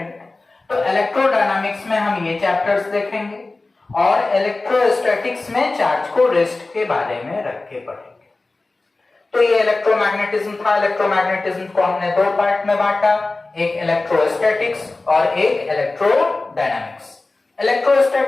तो इलेक्ट्रोडायनामिक्स में हम ये चैप्टर्स देखेंगे और इलेक्ट्रोस्टैटिक्स में चार्ज को रेस्ट के बारे में रख के पढ़ेंगे। तो ये इलेक्ट्रोमैग्नेटिज्म था। इलेक्ट्रोमैग्नेटिज्म को हमने दो पार्ट में बांटा, एक इलेक्ट्रोस्टैटिक्स और एक इलेक्ट्रोडायनामिक्स।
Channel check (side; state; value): right; quieter; 3.3 dB